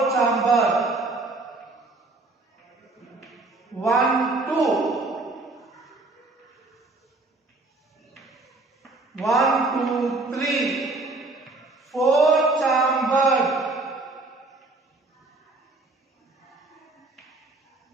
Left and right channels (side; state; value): left; quieter; 3.2 dB